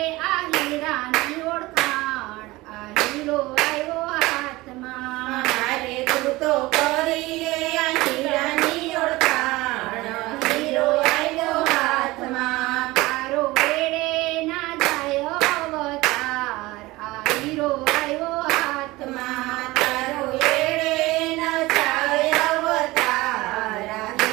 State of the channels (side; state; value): left; quieter; 20.2 dB